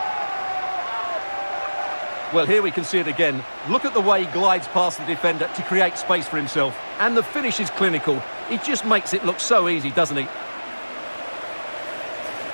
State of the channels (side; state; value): both; inverted; correlation -1.00